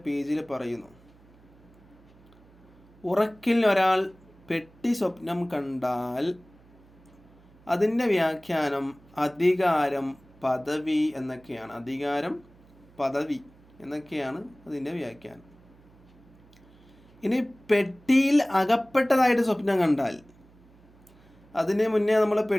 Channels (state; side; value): noise; right; hum, 27 dB below the sound